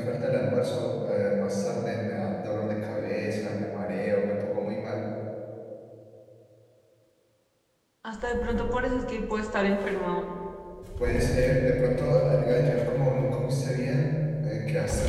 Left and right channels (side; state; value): both; identical; correlation 1.00